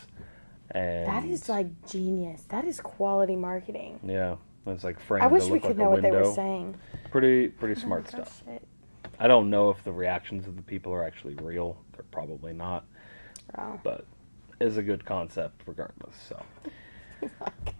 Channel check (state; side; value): inverted; both; correlation -1.00